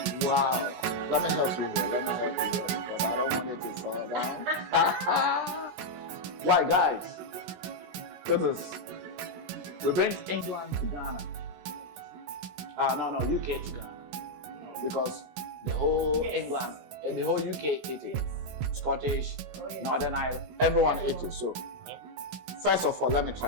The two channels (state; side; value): late; left; 17 ms